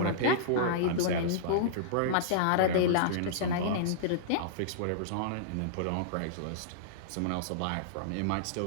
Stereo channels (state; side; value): different; both; correlation -0.02